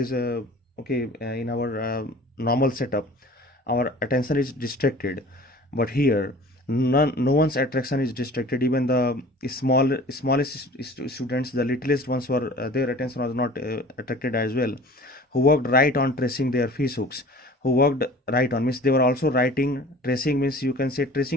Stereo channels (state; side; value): normal; both; correlation 0.45